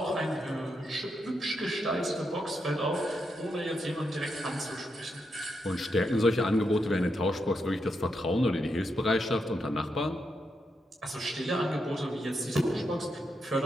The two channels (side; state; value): both; normal; correlation 0.83